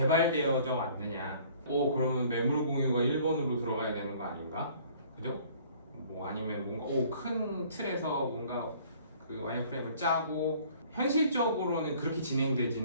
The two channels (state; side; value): inverted; both; correlation -0.54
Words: 왔느냐? 그러면 매물 공유가 1번으로 들어가야 되는 거 아닌가? 그죠? 뭐 아니면 뭔가 큰 틀에서 뭔가 그 와이어프레임을 짜고 현실적으로는 그렇게